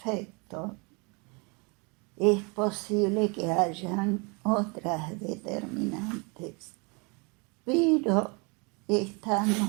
Es posible que hayan otras determinantes, pero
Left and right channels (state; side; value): quieter; left; 30.9 dB